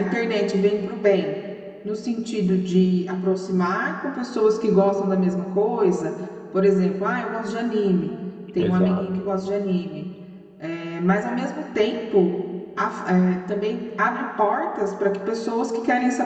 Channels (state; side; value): identical; both; correlation 1.00